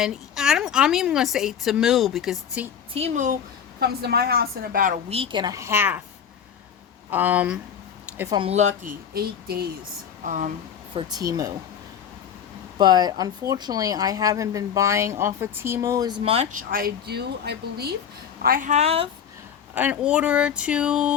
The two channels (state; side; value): quieter; right; 8.1 dB